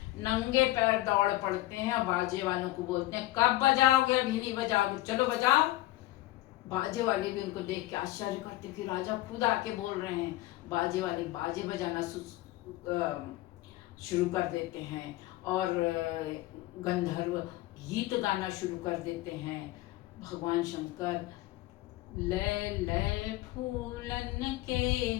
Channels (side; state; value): right; quieter; 17.0 dB